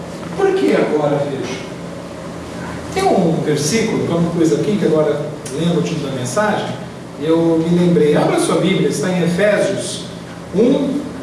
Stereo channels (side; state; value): both; identical; correlation 1.00